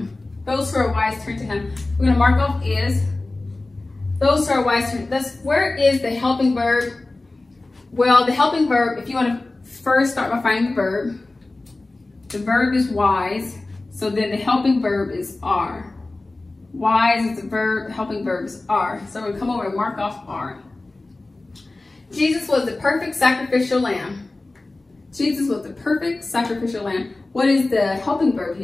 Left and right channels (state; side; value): quieter; right; 3.1 dB